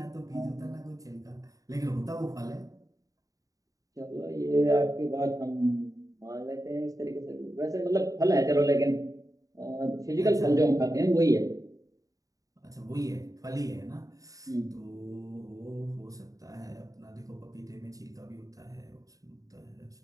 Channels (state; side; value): late; left; 0.17 ms